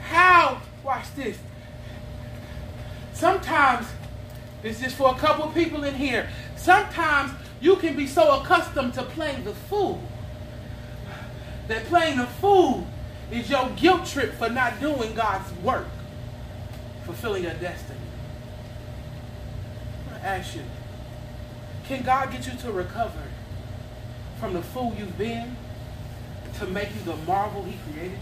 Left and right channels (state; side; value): identical; both; correlation 1.00